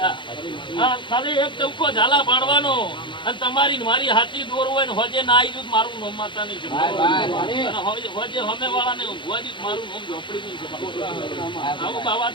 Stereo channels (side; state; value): right; late; 0.23 ms